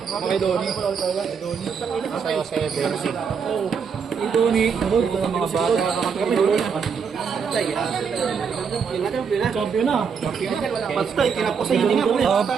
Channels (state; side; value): quieter; left; 6.3 dB